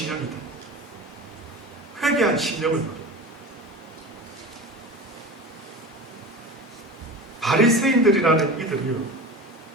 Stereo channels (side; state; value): both; normal; correlation 0.32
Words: 회개한 심령을 말합니다. 바리새인들이라는 이들이요,